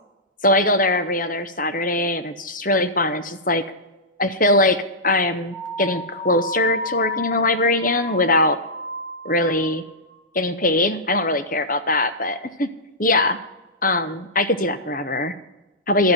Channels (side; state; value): both; normal; correlation -0.14